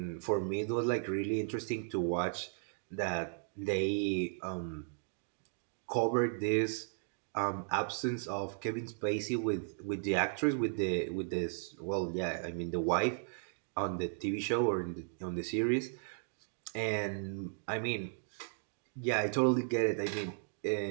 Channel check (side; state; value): left; silent; digital silence